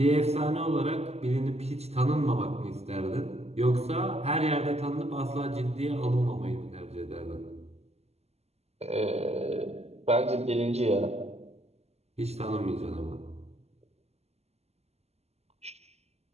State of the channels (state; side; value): late; left; 0.30 ms